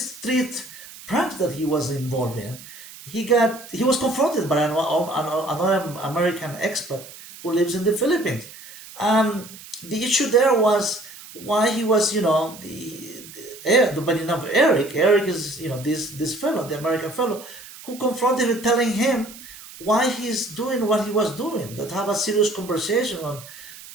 street pranks that he was involved in, he was confronted by another American expert who lives in the Philippines. The issue there was why he was, by the name of Eric. Eric is, this fellow, the American fellow, who confronted him, telling him why he's doing what he was doing. That have a serious conversation on,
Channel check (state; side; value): noise; right; hiss, 17 dB below the sound